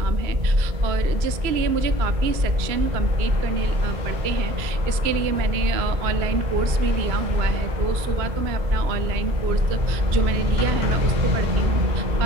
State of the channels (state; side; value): late; left; 2.3 ms